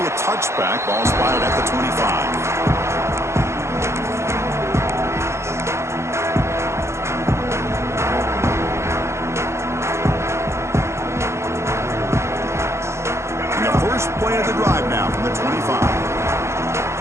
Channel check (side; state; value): left; late; 0.13 ms